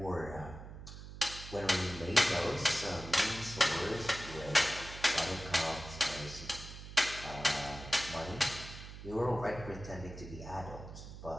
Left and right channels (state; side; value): noise; right; hum, 12 dB below the sound